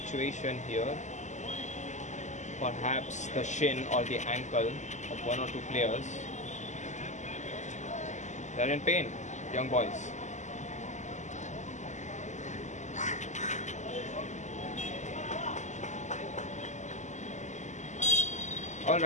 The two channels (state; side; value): late; right; 0.34 ms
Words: here. Perhaps the shin or the ankle of one or two players. They're in pain, young boys.